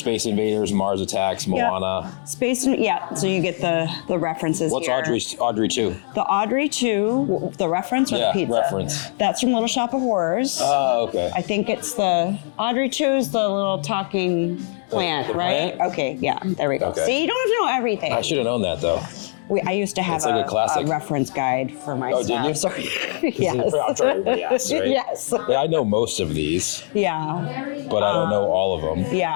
Invaders, Mars Attacks, Moana. So you get the references. What's here. Audrey 2? The Audrey 2, the reference or the pizza? Reference. That's from Little Shop of Horrors. Oh, okay. I think it's the Audrey 2 is the little talking plant, right? Plant? Okay, yeah, there we go. Okay. See, you don't have to know everything. I should have known that though. I used to have like a reference guide for my staff. Did you? Sorry. Yes. I'm sure everybody asks, right? Yes. Yeah, I know most of these. Yeah. But I don't know all of them.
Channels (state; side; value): silent; right; 64 dB below the other